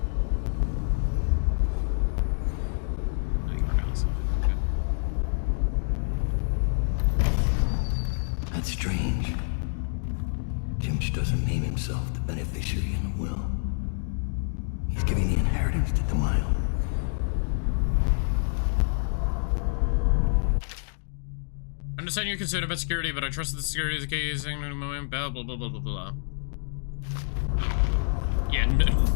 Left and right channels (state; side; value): silent; right; digital silence